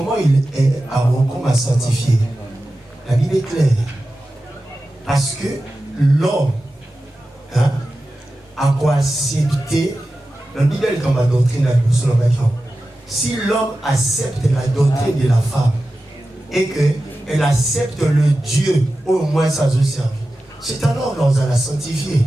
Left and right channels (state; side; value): normal; both; correlation 0.93